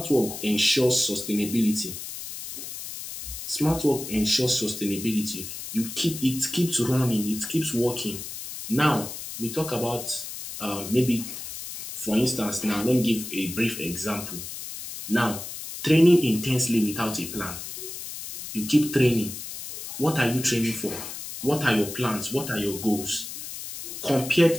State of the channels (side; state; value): left; noise; hiss, 9 dB below the sound